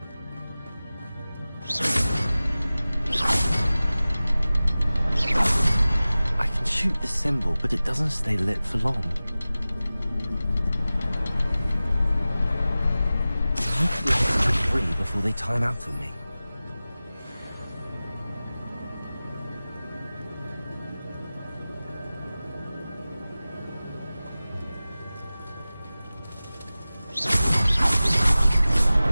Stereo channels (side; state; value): both; inverted; correlation -0.97